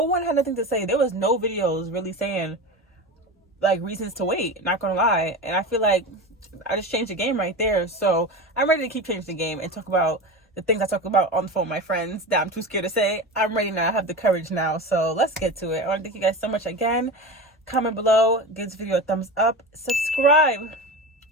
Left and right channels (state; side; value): normal; both; correlation 0.26